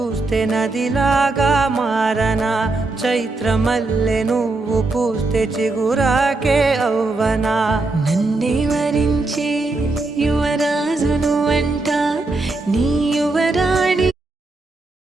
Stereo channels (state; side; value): quieter; left; 3.2 dB